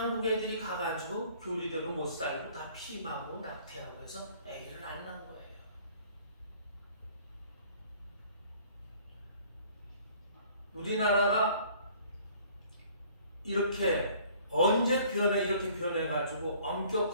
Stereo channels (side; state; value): both; inverted; correlation -0.55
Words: 애들이 가가지고 교리대로 못 살고 다 피임하고 낙태하고 해서 애기를 안 낳은 거예요. 우리나라가 이렇게 언제 이렇게 변해가지고